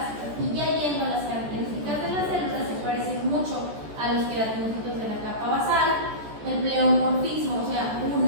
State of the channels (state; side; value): late; left; 14 ms